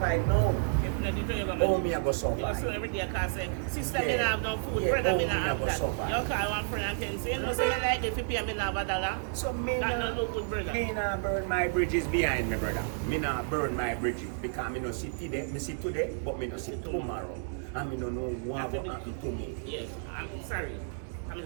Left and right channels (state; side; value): silent; left; digital silence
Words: now. If not, you do your Oh, me I go You survive. so every day I can say, sister, me Yeah. not have no food, Yeah, brother, me oh, not me have never that. suffer. You call one friend and tell you, say, you know, say you like it, if you pay me not have a dollar. So me That nah, don't look good, brother. me nah burn my bridges behind me, brother. Me nah burn my bridges because me no see today, me see today, but me no see tomorrow. And me no know what will happen to me. Yes, I'm sorry. I'm